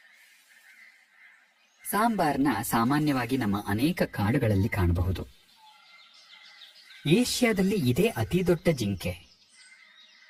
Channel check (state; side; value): identical; both; correlation 1.00